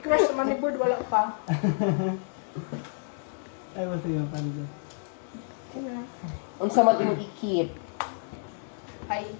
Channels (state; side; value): silent; right; digital silence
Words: crush naman ni Bird, wala pa. Ay, basta yung panda. Unsa man imong i-keep? I